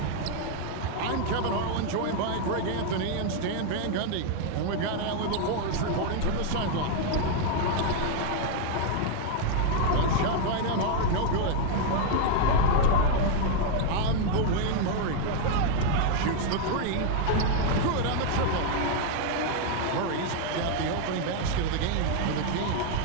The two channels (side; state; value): both; different; correlation 0.00